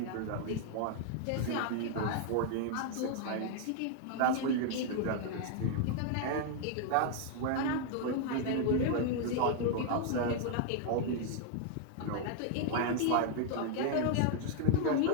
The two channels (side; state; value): both; different; correlation 0.00